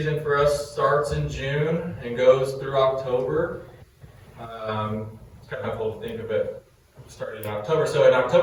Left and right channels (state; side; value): identical; both; correlation 1.00